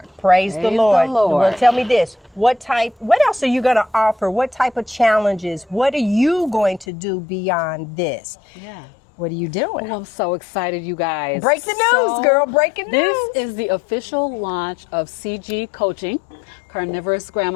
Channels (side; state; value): right; drops out; at 6.9 s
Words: Praise the Lord. Well, tell me this. What else are you going to offer? What type of challenges? What are you going to do beyond this? Yeah. What are you doing? Oh, I'm so excited, you guys. Break the news, girl. Breaking news. This is the official launch of CG Coaching, Carnivorous